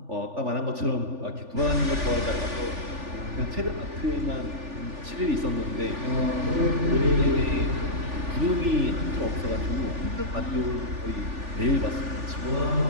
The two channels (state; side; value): late; left; 3.4 ms